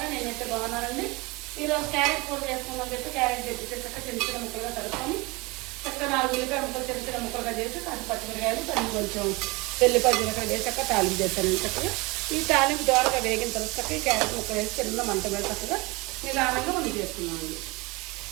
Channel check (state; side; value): quieter; left; 24.7 dB